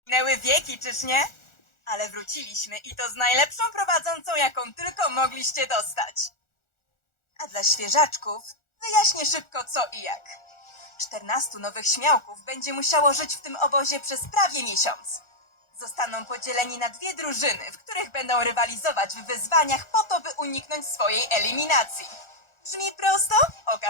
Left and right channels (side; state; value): right; late; 1.4 ms